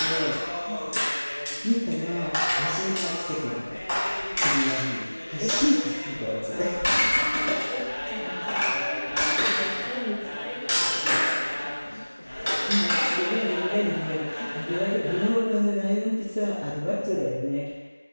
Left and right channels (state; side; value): inverted; both; correlation -1.00